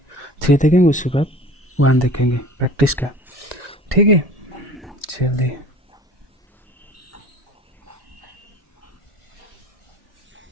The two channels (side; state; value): both; normal; correlation 0.44